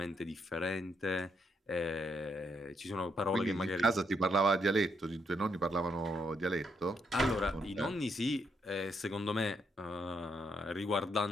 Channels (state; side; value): normal; both; correlation 0.76